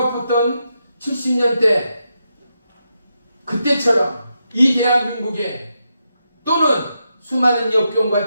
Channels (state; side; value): inverted; both; correlation -0.84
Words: 70년대 그때처럼 이 대한민국에 또는 수많은